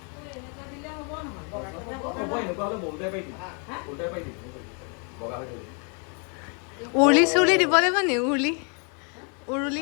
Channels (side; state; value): right; quieter; 37.9 dB